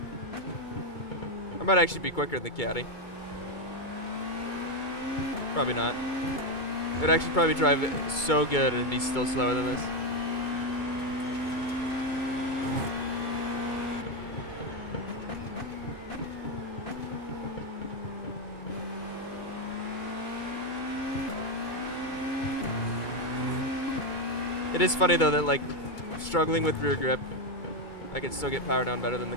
I might actually be quicker than the caddy. Probably not. It would actually probably drive it so good and be still slower than this. It is funny though that like struggling with rear grip, I can still get power down better than the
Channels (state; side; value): late; right; 2.3 ms